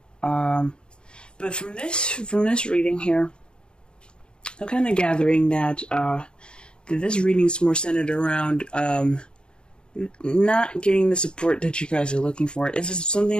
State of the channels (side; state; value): right; late; 0.051 ms